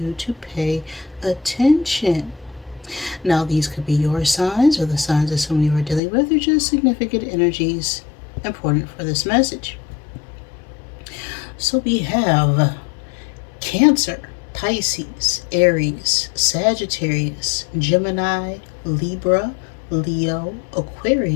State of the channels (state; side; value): drops out; right; at 6.0 s